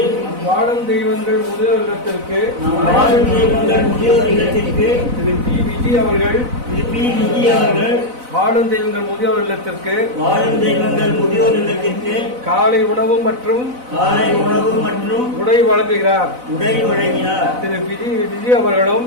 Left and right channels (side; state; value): left; late; 4.0 ms